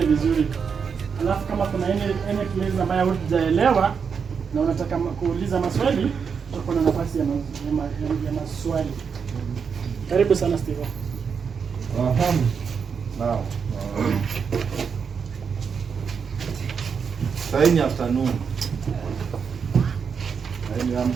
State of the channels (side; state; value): left; quieter; 6.3 dB